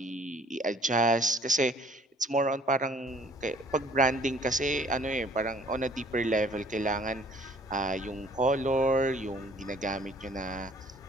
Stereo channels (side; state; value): both; normal; correlation 0.56